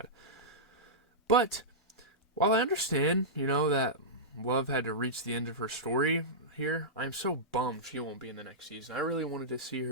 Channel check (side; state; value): both; normal; correlation -0.14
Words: But, while I understand, that Love had to reach the end of her story here, I'm so bummed she won't be in the next season. I really wanted to see